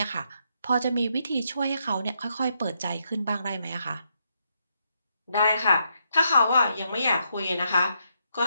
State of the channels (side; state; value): both; inverted; correlation -0.79